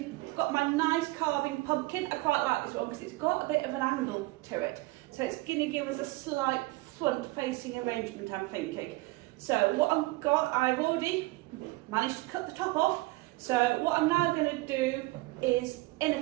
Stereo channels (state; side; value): quieter; left; 21.5 dB